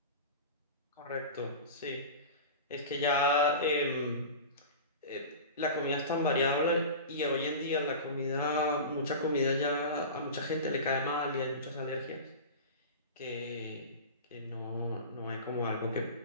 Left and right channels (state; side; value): inverted; both; correlation -0.31